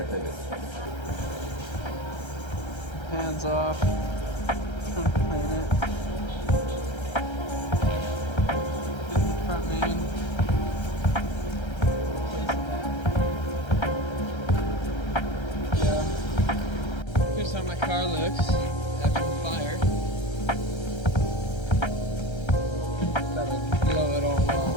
take it. Hands off. Trying to clean it. Get the front main. Here's how my car looks after the fire. That'll blow it all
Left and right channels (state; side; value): late; right; 1.3 ms